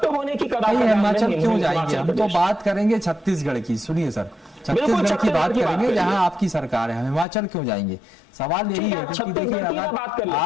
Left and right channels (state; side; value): drops out; right; at 7.2 s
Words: होने की कगार पर हिमाचल क्यों जाएंगे? हम तो बात करेंगे छत्तीसगढ़ की। सुनिए सर, छत्तीसगढ़ की बात करेंगे जहां आपकी सरकार है, हिमाचल क्यों जाएंगे? सवाल यही है कि देखिए अगर